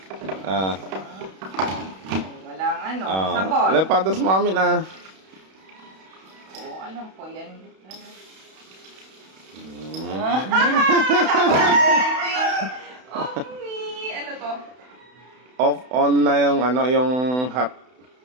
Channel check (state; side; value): late; left; 32 ms